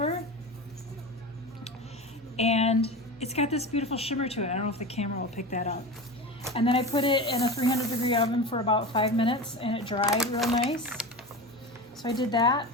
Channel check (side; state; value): both; normal; correlation 0.27